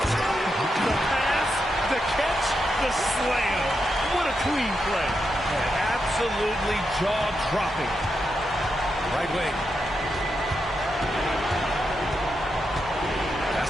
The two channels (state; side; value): normal; both; correlation 0.85